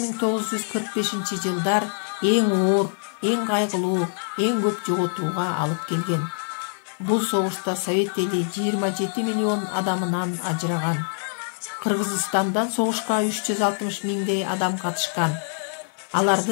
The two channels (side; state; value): right; silent; digital silence